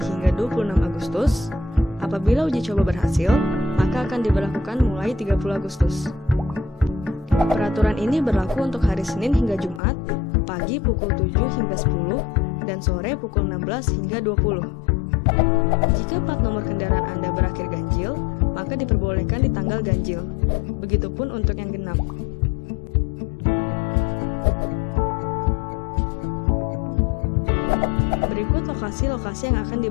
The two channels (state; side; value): drops out; right; at 9.8 s